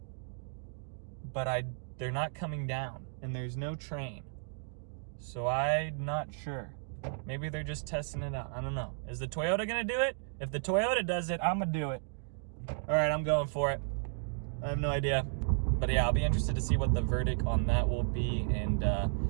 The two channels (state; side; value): silent; left; digital silence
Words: but they're not coming down, and there's no train. So I'm not sure. Maybe they're just testing it out. I don't know. Is the Toyota gonna do it? If the Toyota does it, I'm gonna do it. All right, I'm going for it. I have no idea. But yeah, I'll be interested to see what the verdict on that will be, and